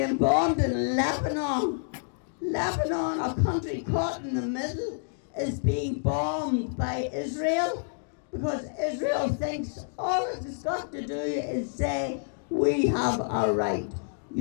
bombed in Lebanon. Lebanon, a country caught in the middle, is being bombed by Israel because Israel thinks all it's got to do is say, we have our right.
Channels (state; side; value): silent; right; digital silence